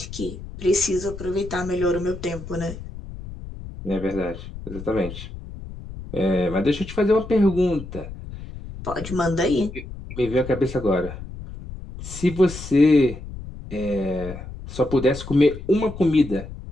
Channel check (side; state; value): left; noise; rumble, 12 dB below the sound